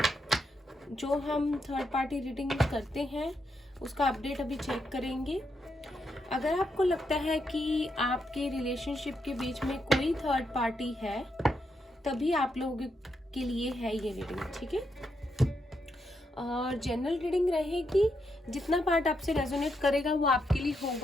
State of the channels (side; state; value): both; normal; correlation 0.81